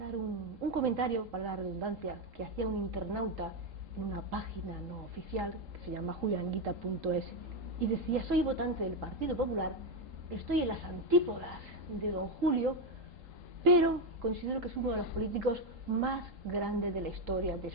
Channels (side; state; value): left; late; 3.8 ms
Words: un comentario, para la redundancia, que hacía un internauta en una página no oficial que se llama julianguita.es y decía: soy votante del Partido Popular, estoy en las antípodas de don Julio, pero considero que es uno de los políticos más grandes de la historia de